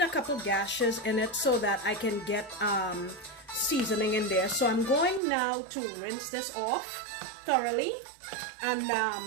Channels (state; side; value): drops out; left; at 5.2 s